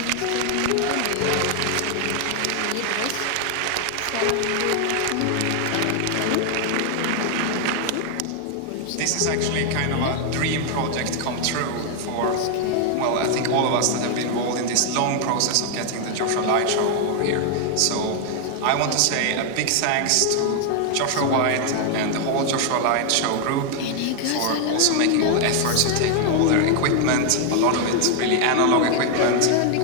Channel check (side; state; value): both; different; correlation 0.00